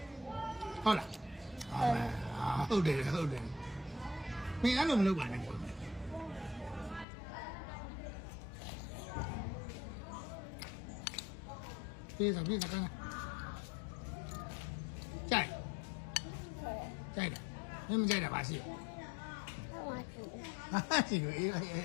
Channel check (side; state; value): right; drops out; at 7.1 s